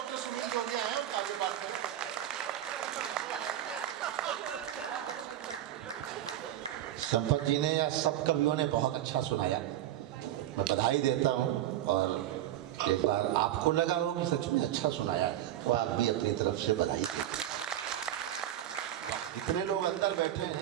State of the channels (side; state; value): left; quieter; 12.4 dB